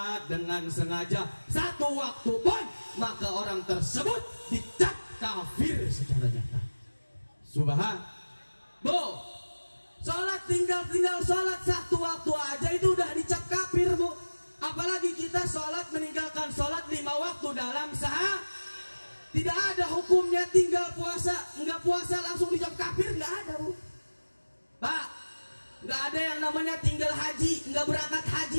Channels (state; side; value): inverted; both; correlation -1.00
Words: dengan sengaja 1 waktu pun, maka orang tersebut dicap kafir secara nyata. Subhan. Bu, sholat tinggal sholat 1 waktu aja itu udah dicap kafir, Bu. Apalagi kita sholat meninggalkan sholat 5 waktu dalam sehari. Tidak ada hukumnya tinggal puasa, enggak puasa langsung dicap kafir, enggak ada, Bu. Pak, nggak ada yang namanya tinggal haji, nggak berangkat